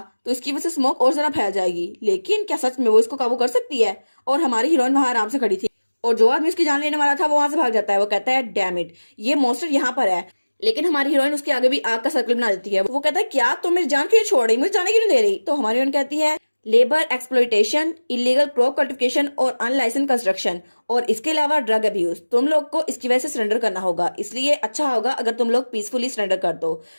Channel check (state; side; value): inverted; both; correlation -1.00